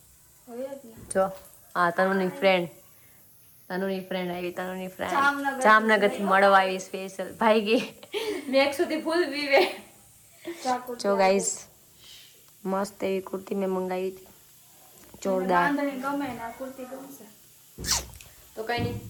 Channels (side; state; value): both; identical; correlation 1.00